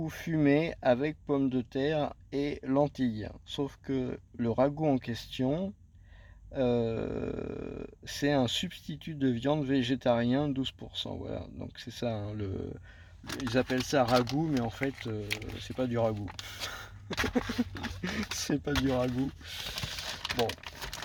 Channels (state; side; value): identical; both; correlation 1.00